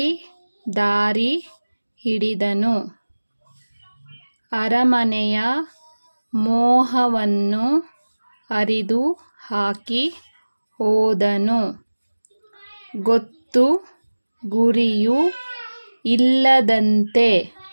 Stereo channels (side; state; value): both; inverted; correlation -1.00